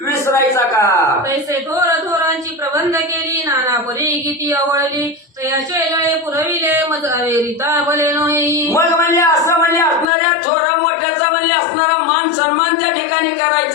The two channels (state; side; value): drops out; right; at 10.1 s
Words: विसरायचा का. पैसे थोर थोरांची प्रबंध केली नाना परी किती आवडली तयाचे गळे पुरविले मजावे रीता भले नोही. मग म्हणजे असं म्हणजे असणाऱ्या थोरा मोठ्याचा म्हणजे असणारा मान सन्मान त्या ठिकाणी